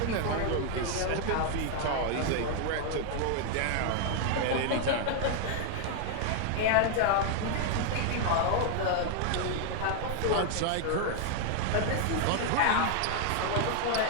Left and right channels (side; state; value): both; different; correlation 0.00